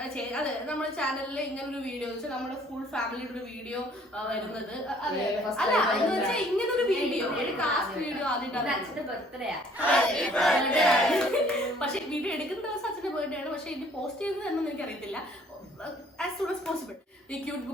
ചാനലിൽ ഇങ്ങനെ ഒരു വീഡിയോ നമ്മുടെ ഫുൾ ഫാമിലിയുടെ ഒരു വീഡിയോ വരുന്നത്. അല്ല എന്ന് വെച്ചാൽ ഇങ്ങനെ ഒരു വീഡിയോ കാസ്റ്റ് വീഡിയോ ആദ്യമായിട്ടാണ്. അച്ഛന്റെ ബർത്ത്ഡേ പക്ഷെ വീഡിയോ എടുക്കുന്ന ദിവസം അച്ഛന്റെ ബർത്ത്ഡേ ആണ്. പക്ഷെ ഇത് പോസ്റ്റ് ചെയ്യുന്നത് എന്നൊന്നും എനിക്കറിയത്തില്ല. As soon as possible. ഈ ക്യൂട്ട്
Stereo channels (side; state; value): both; normal; correlation 0.58